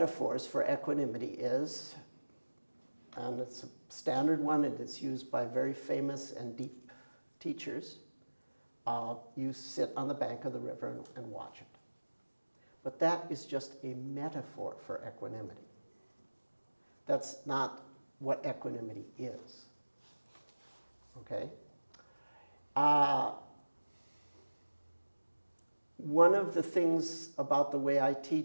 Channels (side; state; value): both; inverted; correlation -1.00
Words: for equanimity is, and it's a standard one, and it's used by very famous and deep teachers, you sit on the bank of the river and watch it. But that is just a metaphor for equanimity. That's not what equanimity is. Okay? One of the things about the way I